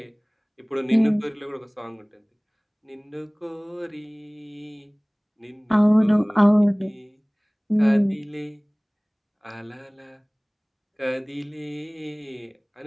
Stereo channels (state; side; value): identical; both; correlation 1.00